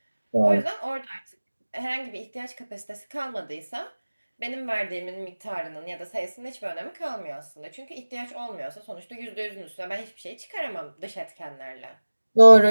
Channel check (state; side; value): inverted; both; correlation -1.00